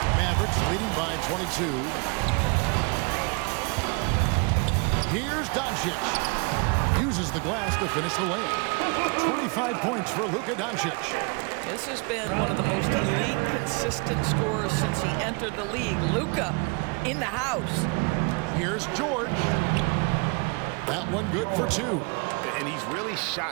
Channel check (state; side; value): quieter; left; 31.7 dB